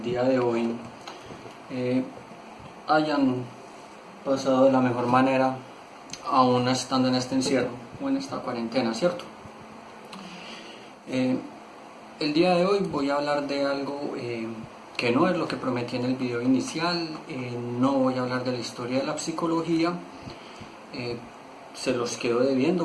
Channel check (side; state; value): both; identical; correlation 1.00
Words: día de hoy hayan pasado de la mejor manera, aún estando en este encierro o en esta cuarentena, ¿cierto? El día de hoy voy a hablar de algo que no es lo que prometí en el video inicial, no voy a hablar de la historia de la psicología, se los quedo